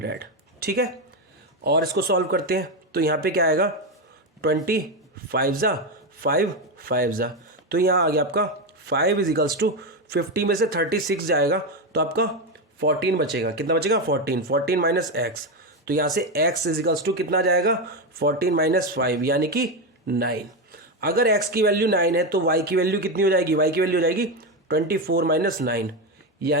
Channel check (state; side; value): normal; both; correlation 0.11